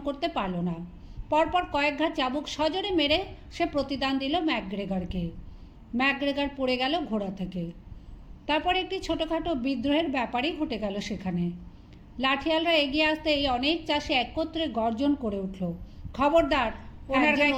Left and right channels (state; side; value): identical; both; correlation 1.00